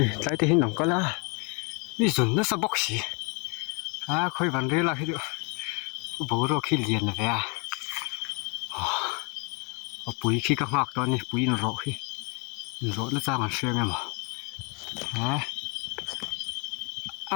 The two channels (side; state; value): right; quieter; 33.5 dB